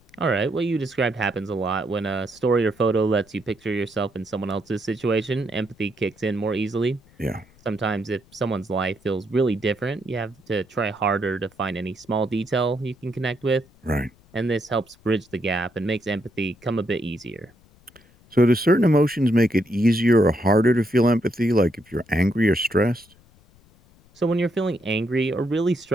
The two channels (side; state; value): left; noise; rumble, 29 dB below the sound